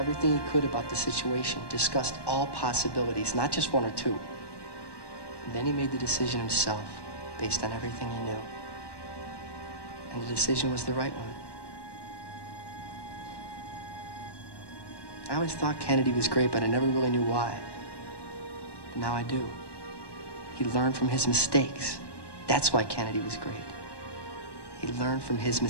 he could about the situation, discussed all possibilities, not just one or two. And then he made the decision himself, based on everything he knew. And the decision was the right one. I always thought Kennedy was great, but I never really knew why. But now I do. He learned from his mistakes. That's why Kennedy was great. He learned from his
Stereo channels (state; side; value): late; right; 1.1 ms